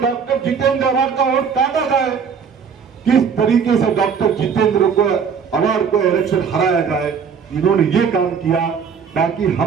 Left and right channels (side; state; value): left; quieter; 6.5 dB